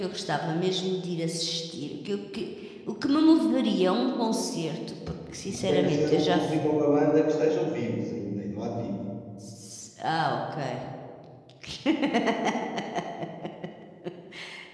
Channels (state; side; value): identical; both; correlation 1.00